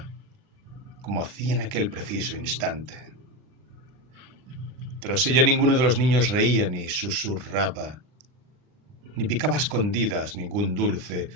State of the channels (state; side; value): late; left; 39 ms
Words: como hacía en aquel preciso instante. Tras ella ninguno de los niños reía ni susurraba, ni picaba a escondidas ningún dulce